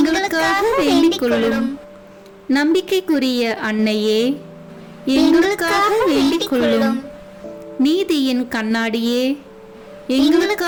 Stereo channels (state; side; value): identical; both; correlation 1.00